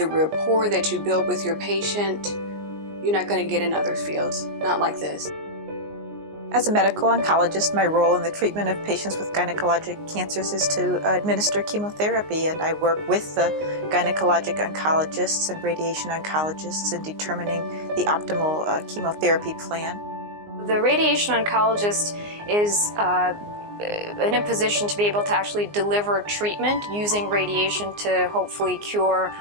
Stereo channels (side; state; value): left; late; 19 ms